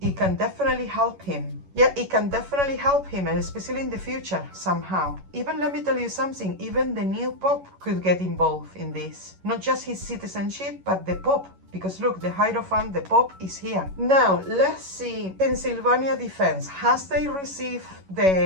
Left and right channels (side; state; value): left; late; 11 ms